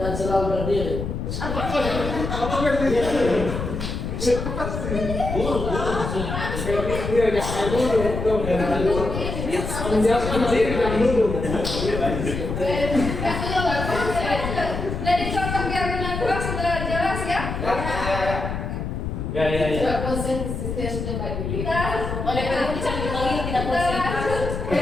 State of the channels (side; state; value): left; noise; rumble, 4 dB below the sound